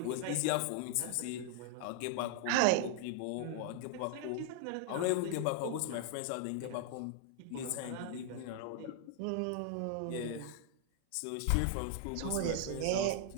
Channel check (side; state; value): both; different; correlation 0.00